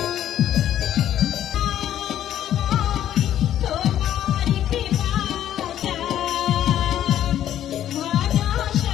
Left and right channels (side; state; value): right; quieter; 11.3 dB